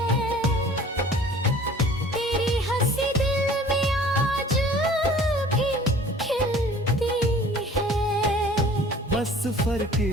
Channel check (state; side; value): normal; both; correlation 0.48